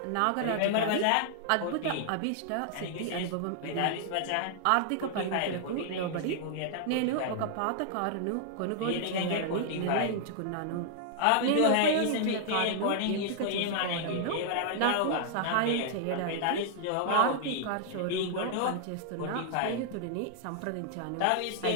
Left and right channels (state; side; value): different; both; correlation -0.01